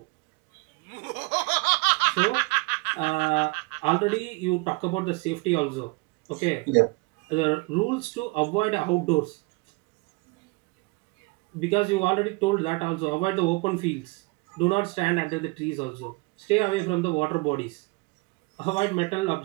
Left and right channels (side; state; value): left; quieter; 27.5 dB